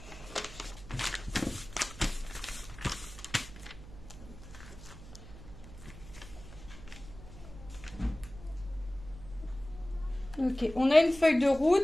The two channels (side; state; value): right; noise; hum, 16 dB below the sound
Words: Ok, on a une feuille de